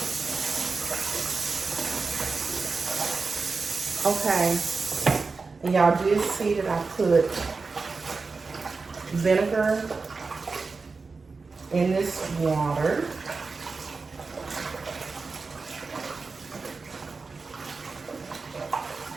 okay. And y'all did see that I put vinegar in this water.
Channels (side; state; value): left; quieter; 4.3 dB